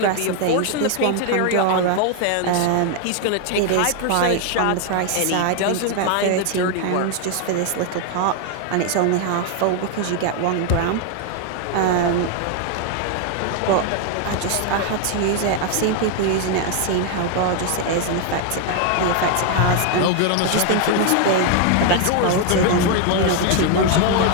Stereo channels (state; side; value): different; both; correlation 0.00